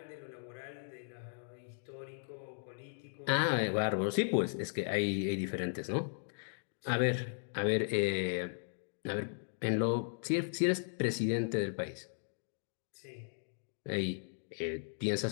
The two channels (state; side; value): silent; right; digital silence